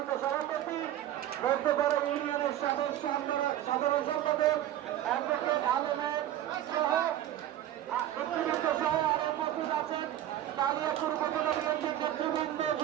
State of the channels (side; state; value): left; quieter; 12.5 dB